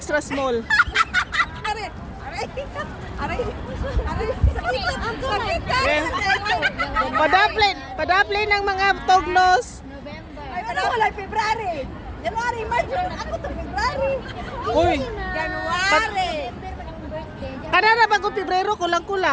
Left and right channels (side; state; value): both; identical; correlation 1.00